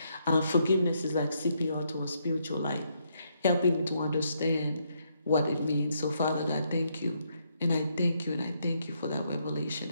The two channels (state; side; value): inverted; both; correlation -0.75